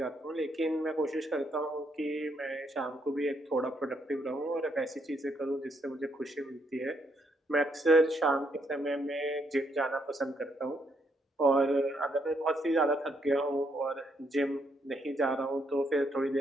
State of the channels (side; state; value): both; normal; correlation 0.75